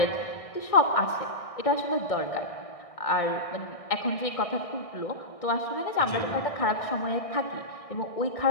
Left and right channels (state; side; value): late; right; 1.6 ms